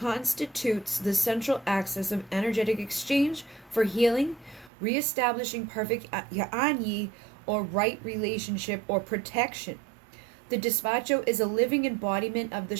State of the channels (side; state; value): left; drops out; at 4.7 s